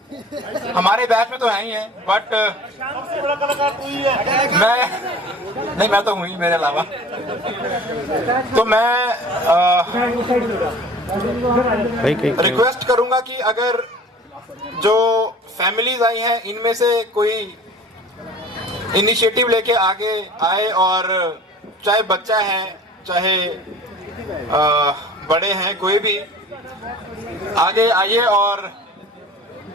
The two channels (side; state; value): both; normal; correlation 0.44